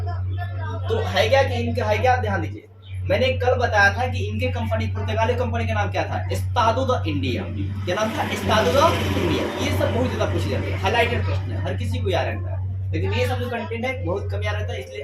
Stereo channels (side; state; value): both; identical; correlation 1.00